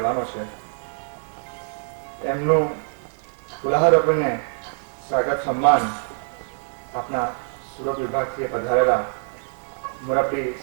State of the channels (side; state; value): left; silent; 62 dB below the other